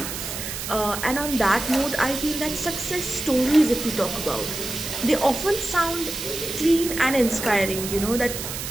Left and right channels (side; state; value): right; noise; hiss, 6 dB below the sound